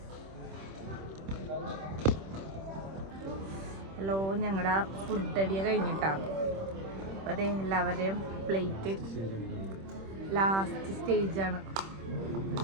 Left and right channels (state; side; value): late; left; 26 ms